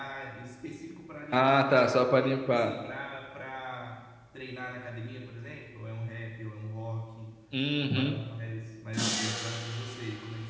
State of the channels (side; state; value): both; identical; correlation 1.00